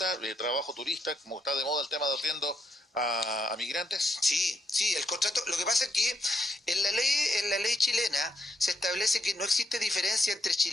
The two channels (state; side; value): normal; both; correlation 0.78